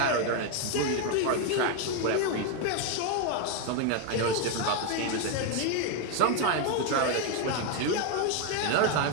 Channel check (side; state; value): both; different; correlation 0.01